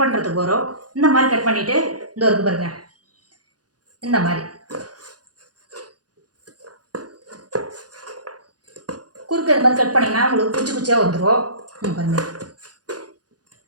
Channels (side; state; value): left; late; 0.69 ms